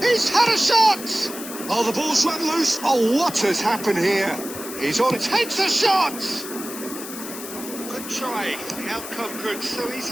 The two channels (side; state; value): left; noise; hiss, 10 dB below the sound